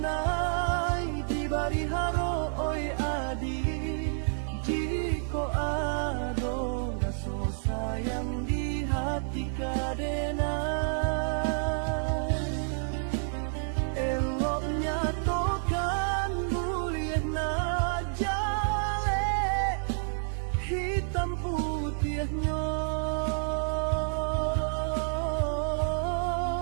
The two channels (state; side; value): silent; left; digital silence